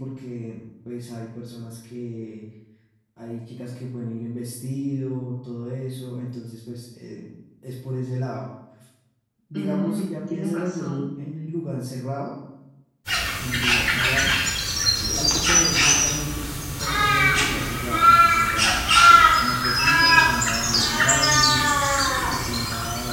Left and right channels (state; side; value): identical; both; correlation 1.00